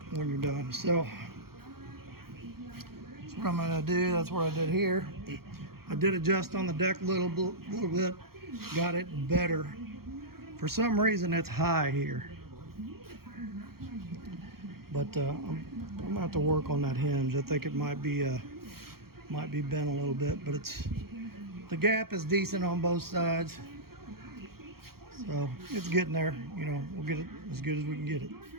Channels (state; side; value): late; left; 0.94 ms